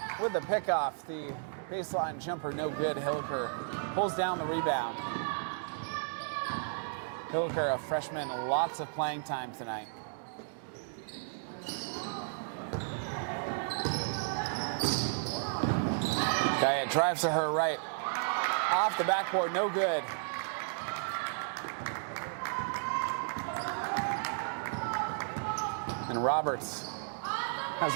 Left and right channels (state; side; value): silent; left; digital silence